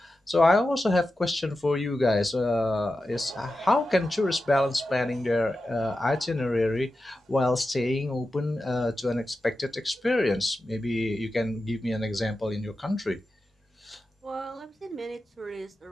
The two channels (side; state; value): both; normal; correlation 0.92